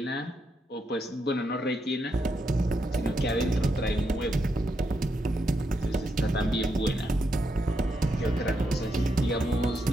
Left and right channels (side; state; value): both; normal; correlation 0.81